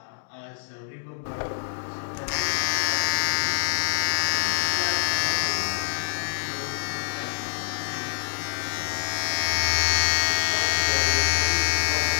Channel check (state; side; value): silent; right; digital silence